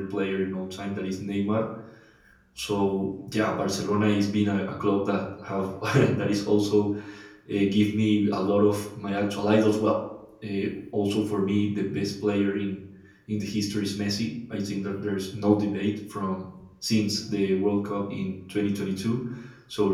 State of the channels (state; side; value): identical; both; correlation 1.00